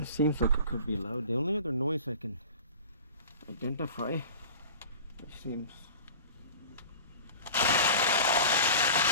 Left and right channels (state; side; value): inverted; both; correlation -0.38